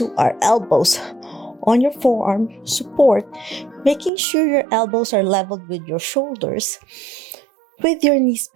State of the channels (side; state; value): left; drops out; at 4.1 s